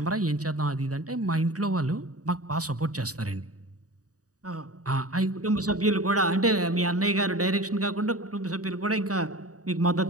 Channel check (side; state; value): left; late; 0.67 ms